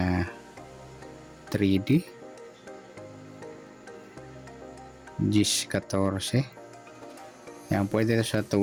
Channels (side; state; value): both; identical; correlation 1.00